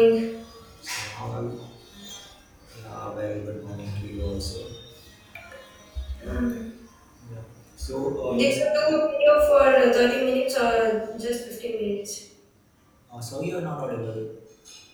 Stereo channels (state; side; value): identical; both; correlation 1.00